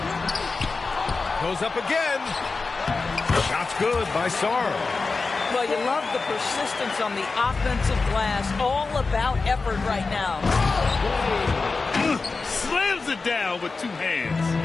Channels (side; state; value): right; quieter; 4.1 dB